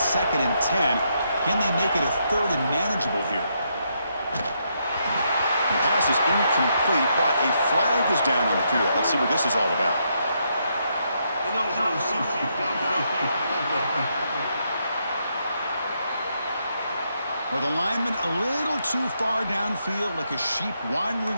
2nd and 10. Can they make it a 3rd and manageable here? The pass is incomplete, but a flag is down on the field. Let's see what this is all about. Well, the lineman a little too far downfield, like a sheep wandering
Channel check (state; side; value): inverted; both; correlation -0.78